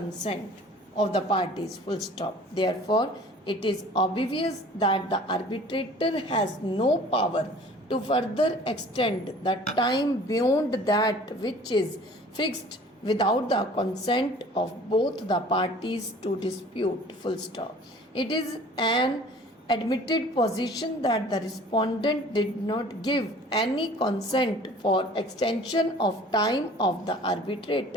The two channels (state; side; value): normal; both; correlation 0.48